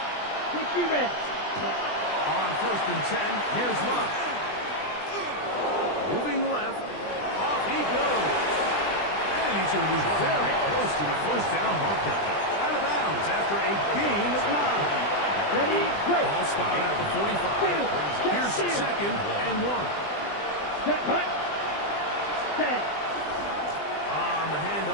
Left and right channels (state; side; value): late; right; 20 ms